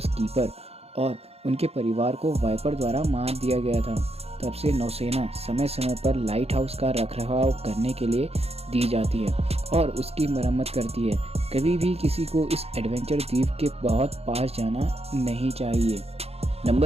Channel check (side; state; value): left; late; 0.29 ms